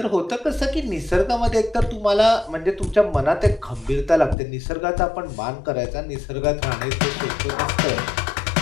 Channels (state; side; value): drops out; right; at 4.4 s